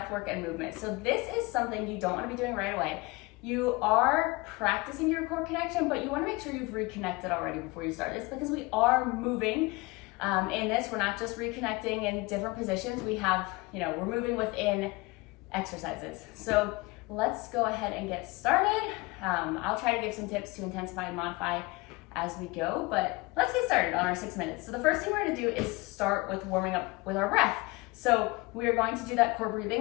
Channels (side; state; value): right; quieter; 24.0 dB